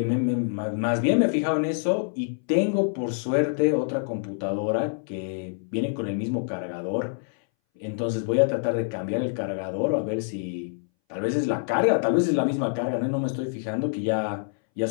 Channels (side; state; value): right; silent; 60 dB below the other